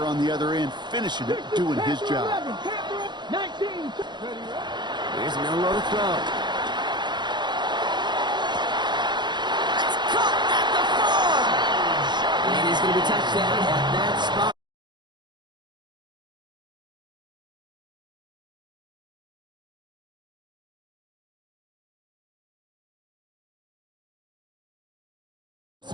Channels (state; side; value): late; left; 0.21 ms